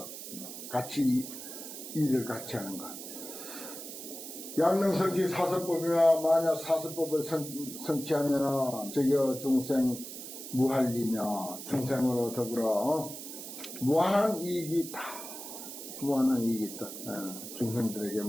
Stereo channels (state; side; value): noise; right; hiss, 10 dB below the sound